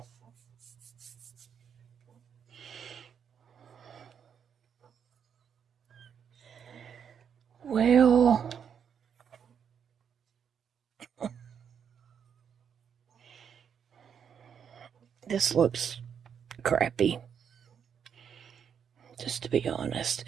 This looks crappy. Just to be honest,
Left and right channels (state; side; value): quieter; left; 7.7 dB